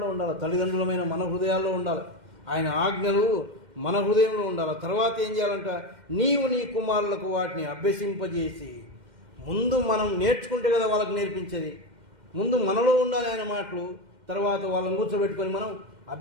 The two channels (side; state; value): left; late; 2.1 ms